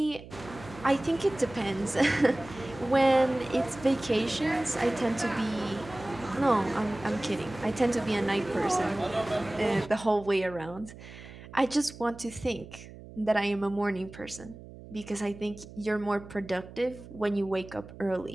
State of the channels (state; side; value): noise; right; hum, 16 dB below the sound